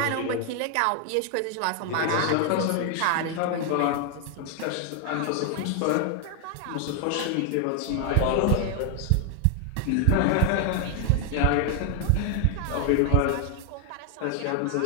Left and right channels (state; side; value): different; both; correlation 0.00